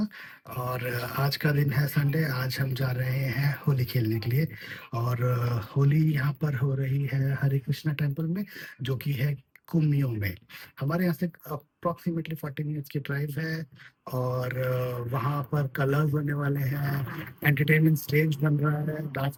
और आज का दिन है संडे। आज हम जा रहे हैं होली खेलने के लिए। और होली यहाँ पर हो रही है हरे कृष्णा टेम्पल में, जो कि है कुमियो में। हमारे यहाँ से अप्रॉक्सीमेटली 40 मिनट्स की ड्राइव है। और वहाँ पर कलर्स होने वाले हैं, एंटरटेनमेंट स्टेज बन रहा है, डांस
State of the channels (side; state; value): both; identical; correlation 1.00